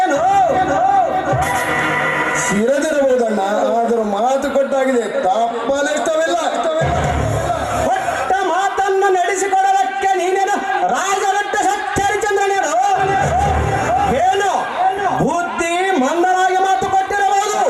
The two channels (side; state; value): both; identical; correlation 1.00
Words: ಶಿರದಿರಬಹುದಣ್ಣ, ಆದರೂ ಮಾತು ಕೊಟ್ಟಾಗಿದೆ, ತಪ್ಪಲಿಷ್ಟವಿಲ್ಲ. ಕೊಟ್ಟ ಮಾತನ್ನು ನಡೆಸಿಕೊಡಲಕ್ಕೆ ನೀನೇನು ರಾಜರಟ್ಟ ಸಚ್ಚರಿಚಂದ್ರನೇನು? ಏನು ಬುದ್ಧಿ ಮಂದರಾಗಿ ಮಾತು ಕೊಟ್ಟಿರಬಹುದು.